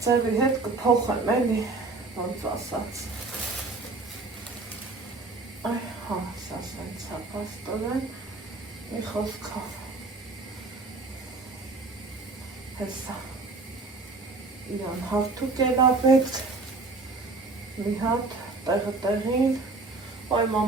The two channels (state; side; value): quieter; left; 3.7 dB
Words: ձևի հետ կփոխեմ էլի, ոնց ասած։ Այ, հա, սաս ոնց է պաստորեն, մի խոսքով։ Հեսա, իրան հարթուկ է լապեք, մի հատ, տեղը տեղին, այ